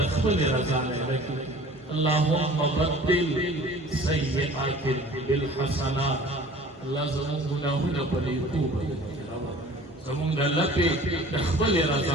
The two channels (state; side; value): normal; both; correlation 0.46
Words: خپل رضا لکه اللهم بدل سیئات بالحسنات الله زموږ ګناهونه په توبه زموږ د الله په خپل